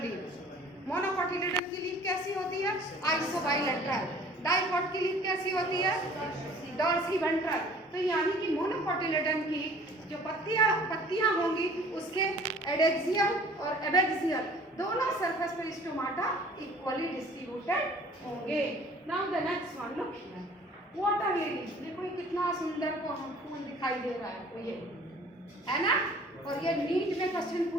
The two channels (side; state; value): both; normal; correlation 0.51